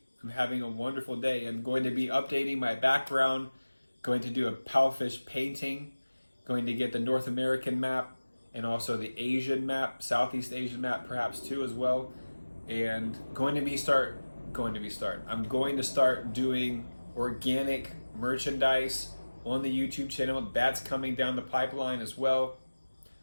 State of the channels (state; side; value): inverted; both; correlation -1.00